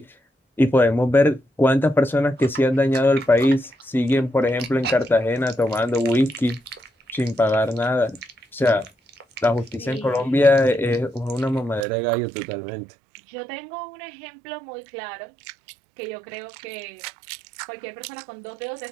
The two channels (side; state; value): left; drops out; at 11.9 s